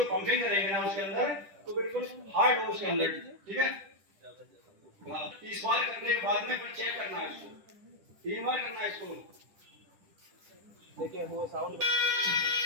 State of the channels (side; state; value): left; late; 10 ms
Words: पंपिंग करेंगे ना उसके अंदर तो बिल्कुल हार्ड हो उसके अंदर, ठीक है। 30 बार करने के बाद में फिर चेक करना है इसको, 3 बार करना है इसको। देखिए वो साउंड